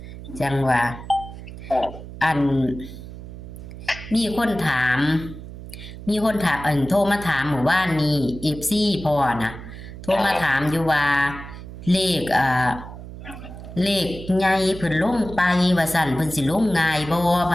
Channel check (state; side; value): noise; right; hum, 13 dB below the sound